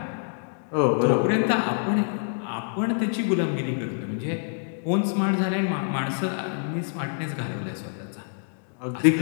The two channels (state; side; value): silent; right; digital silence